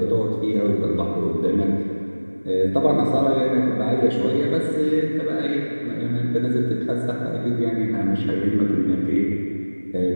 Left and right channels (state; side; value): inverted; both; correlation -1.00